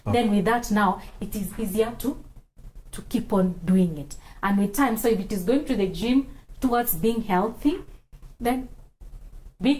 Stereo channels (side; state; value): both; identical; correlation 1.00